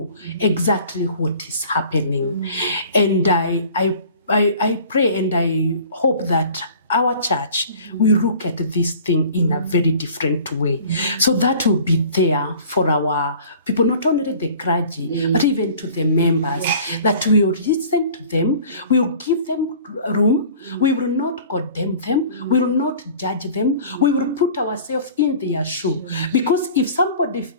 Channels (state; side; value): inverted; both; correlation -0.46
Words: exactly what is happening. And I pray and I hope that our church will look at this thing in a very different way. So that will be there for our people, not only the clergy, but even to the members, that we will listen to them, we will give them room, we will not condemn them, we will not judge them, we will put ourselves in their shoe. Because if somebody